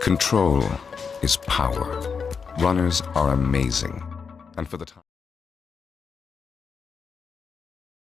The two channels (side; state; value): right; quieter; 5.8 dB